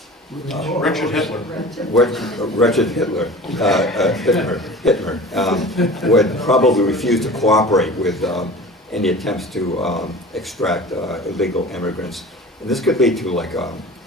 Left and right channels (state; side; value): normal; both; correlation 0.39